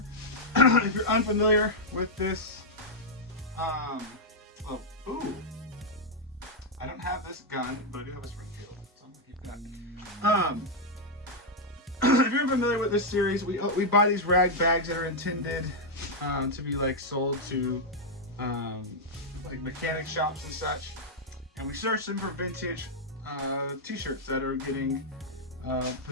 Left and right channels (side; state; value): both; normal; correlation -0.03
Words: If you're unfamiliar with this, I don't have this gun, but I do have a Springfield, so I'm gonna keep that. If you're familiar with this series, we buy these rag bags that are intended to be like sold to like mechanic shops and such, and we search them for vintage t-shirts that are getting